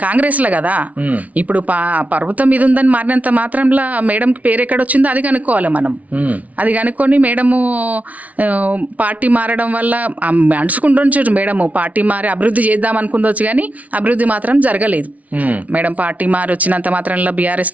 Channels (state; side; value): late; left; 0.069 ms